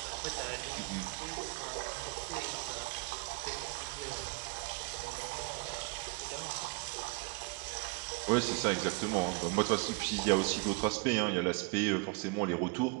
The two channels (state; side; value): quieter; left; 28.5 dB